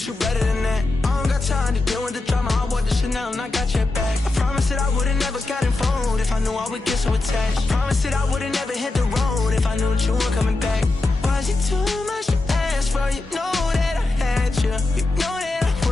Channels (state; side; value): quieter; right; 3.1 dB